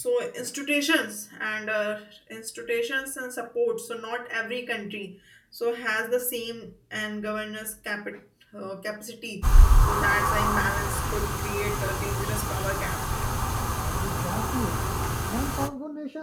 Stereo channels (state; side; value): identical; both; correlation 1.00